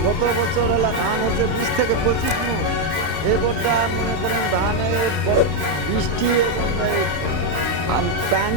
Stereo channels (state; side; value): late; left; 31 ms